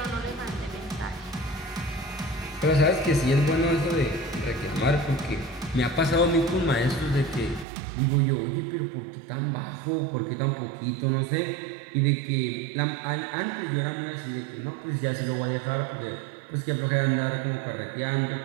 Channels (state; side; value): drops out; left; at 7.7 s